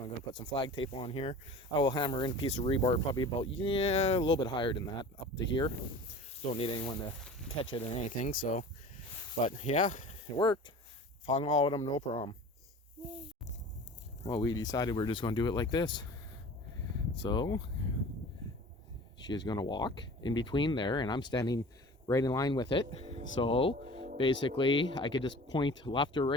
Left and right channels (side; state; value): both; normal; correlation 0.40